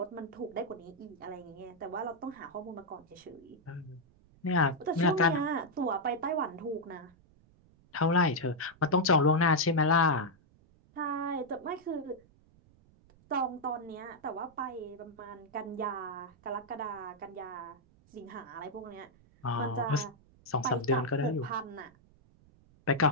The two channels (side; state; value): right; noise; rumble, 29 dB below the sound